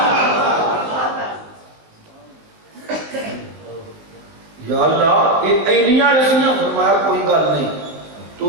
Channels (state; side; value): late; left; 19 ms